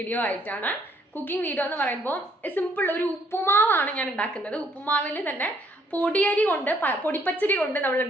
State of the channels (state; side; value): normal; both; correlation 0.67